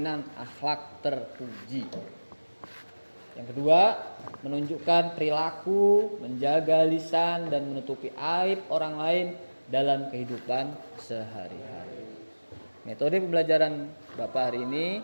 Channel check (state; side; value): inverted; both; correlation -1.00